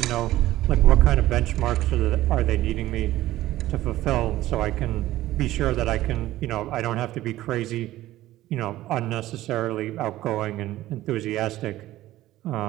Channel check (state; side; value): quieter; left; 15.4 dB